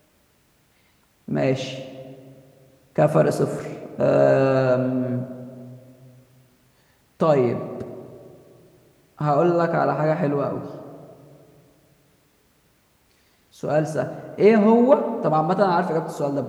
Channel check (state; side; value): identical; both; correlation 1.00